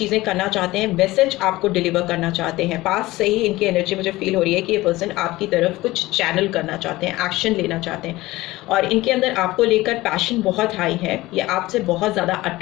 करना चाहते हैं, मैसेज आपको डिलीवर करना चाहते हैं। पास से ही इनकी एनर्जी मुझे फील हो रही है कि ये पर्सन आपकी तरफ कुछ चैनल करना चाहते हैं, एक्शन लेना चाहते हैं और इनके अंदर आपको लेकर पैशन बहुत हाई है। ये आपसे बहुत ज़्यादा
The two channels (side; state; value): right; quieter; 18.6 dB